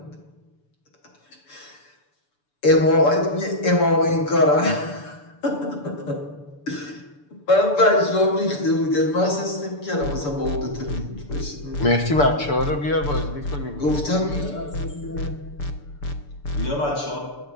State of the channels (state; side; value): late; right; 6.9 ms